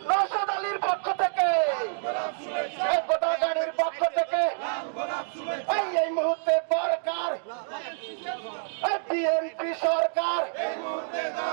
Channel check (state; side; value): silent; left; digital silence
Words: নওশাদ আলীর পক্ষ থেকে, গোদাগাড়ির পক্ষ থেকে এই মুহূর্তে দরকার বিএনপি সরকার।